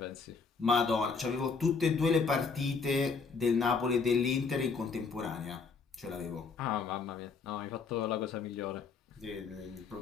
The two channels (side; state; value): right; quieter; 5.0 dB